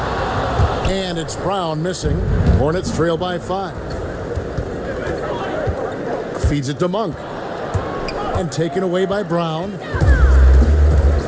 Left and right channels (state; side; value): identical; both; correlation 1.00